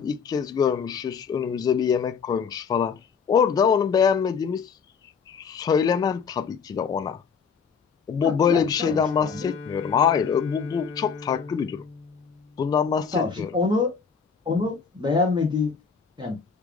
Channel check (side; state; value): right; quieter; 6.1 dB